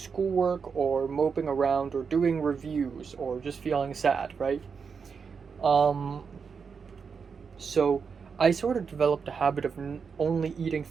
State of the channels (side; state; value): left; quieter; 5.8 dB